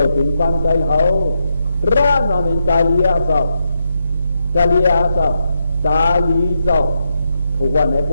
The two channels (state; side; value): inverted; both; correlation -0.83